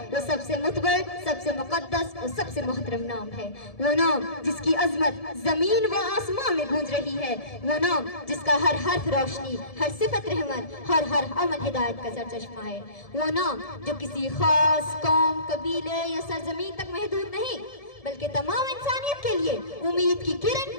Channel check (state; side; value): late; right; 1.7 ms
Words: وہ سب سے معتبر، سب سے مقدس اور سب سے محترم نام ہے، وہ نام جس کی عظمت زمین و آسمان میں گونج رہی ہے، وہ نام جس کا ہر حرف روشنی، ہر صفت رحمت، ہر عمل ہدایت کا سرچشمہ ہے، وہ نام جو کسی خاص قوم، قبیلے یا سرزمین تک محدود نہیں بلکہ تمام انسانیت کے لیے امید کی کرن،